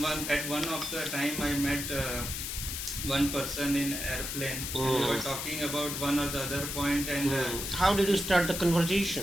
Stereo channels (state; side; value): noise; left; hiss, 4 dB below the sound